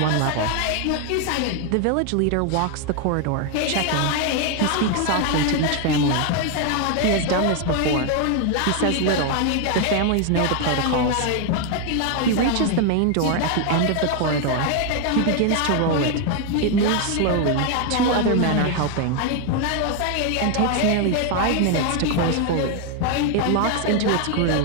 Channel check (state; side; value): different; both; correlation 0.01